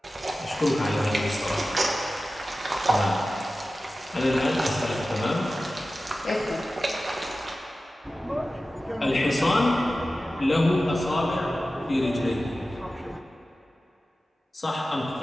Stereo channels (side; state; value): both; normal; correlation 0.95